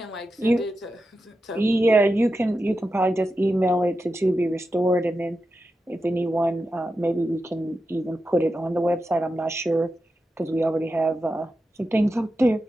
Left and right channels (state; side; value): normal; both; correlation 0.90